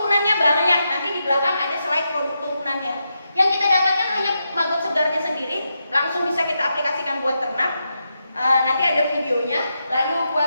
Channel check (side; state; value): both; inverted; correlation -0.85